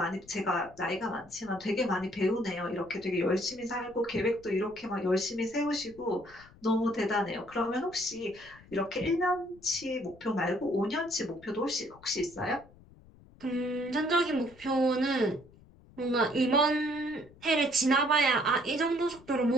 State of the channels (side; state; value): left; noise; rumble, 24 dB below the sound